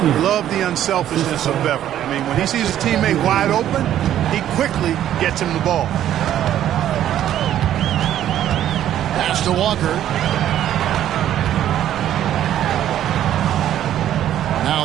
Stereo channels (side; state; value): left; quieter; 11.5 dB